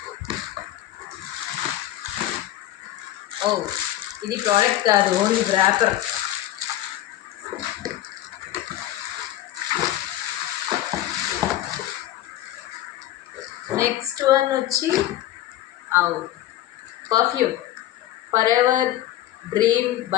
ఓ, ఇది ప్రోడక్ట్ కాదు, ఓన్లీ ర్యాపర్. నెక్స్ట్ వన్ వచ్చి perfume, forever dream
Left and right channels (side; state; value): right; quieter; 13.7 dB